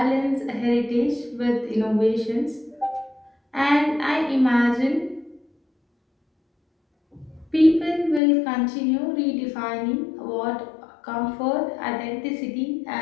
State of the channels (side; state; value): right; drops out; at 8.2 s